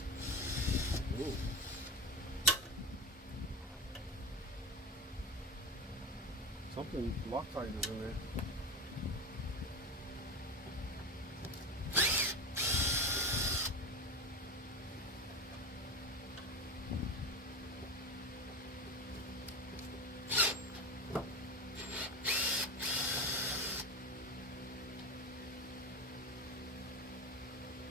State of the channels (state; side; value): normal; both; correlation 0.23